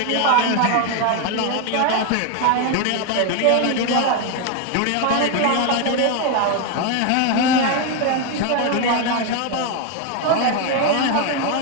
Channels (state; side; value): different; both; correlation 0.01